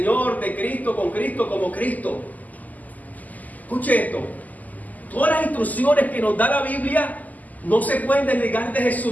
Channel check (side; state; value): right; late; 0.080 ms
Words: de Cristo, con Cristo, como Cristo. Escuche esto. Todas las instrucciones que nos da la Biblia no se pueden desligar de